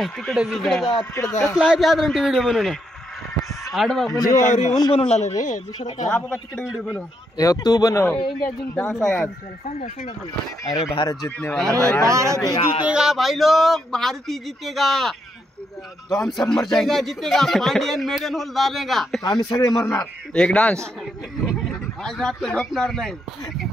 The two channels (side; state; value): both; normal; correlation 0.78